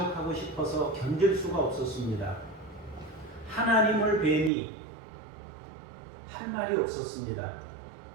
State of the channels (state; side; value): drops out; left; at 4.5 s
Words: 싶어서 견딜 수가 없었습니다. 하나님을 뵈니 할 말이 없었습니다.